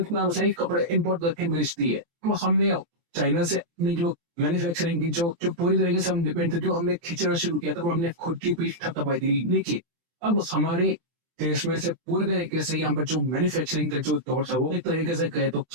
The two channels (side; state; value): left; late; 24 ms